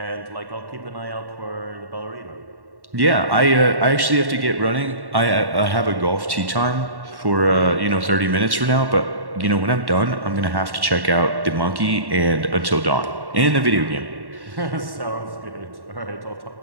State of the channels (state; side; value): late; left; 1.1 ms